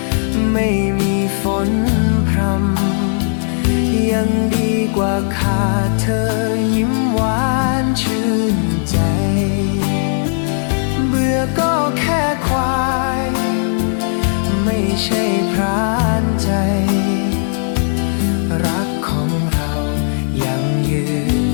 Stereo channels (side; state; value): right; silent; digital silence